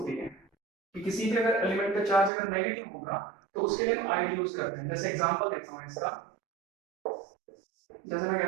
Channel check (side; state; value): left; drops out; at 2.3 s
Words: है कि किसी भी अगर एलिमेंट का चार्ज अगर नेगेटिव होगा तो उसके लिए हम आईडी यूज करते हैं। जैसे एग्जांपल देखता हूं इसका, जैसे मैं